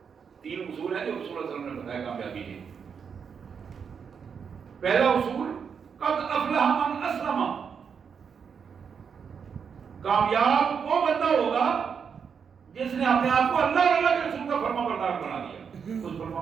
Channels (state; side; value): quieter; left; 6.6 dB